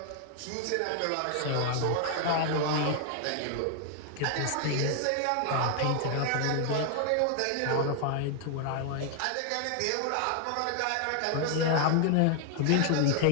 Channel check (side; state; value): both; different; correlation 0.00